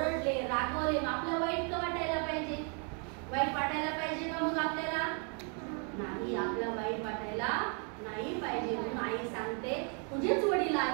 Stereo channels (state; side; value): quieter; left; 39.0 dB